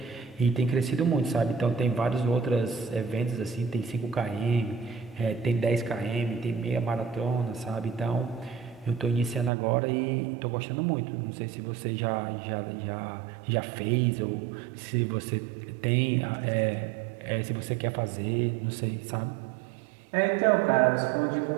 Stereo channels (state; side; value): drops out; left; at 9.5 s